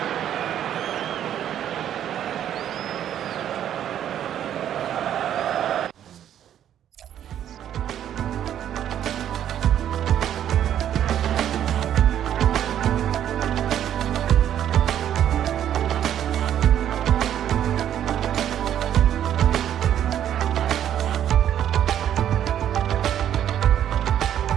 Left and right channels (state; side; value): quieter; left; 10.4 dB